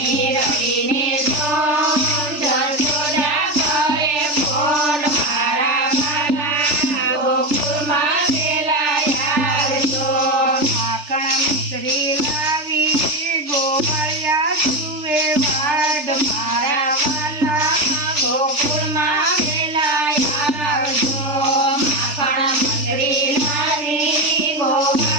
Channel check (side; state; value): left; late; 3.4 ms